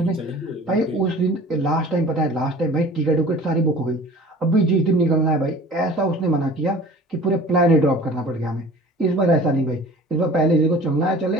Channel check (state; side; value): normal; both; correlation 0.44